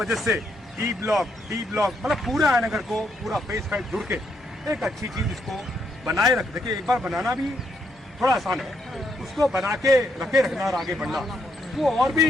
से डी ब्लॉक मतलब पूरा आयनगर को पूरा फेज 5 जुड़ के एक अच्छी चीज इसको बनाए रख। देखिए, एक बार बनाना भी थोड़ा आसान है, उसको बना के रखे रखना और आगे बढ़ना वो और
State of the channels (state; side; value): normal; both; correlation 0.76